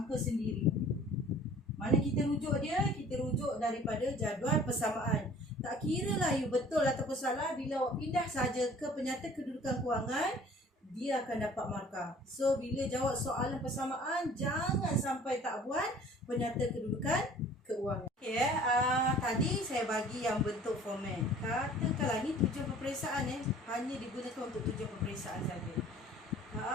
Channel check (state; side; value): normal; both; correlation 0.50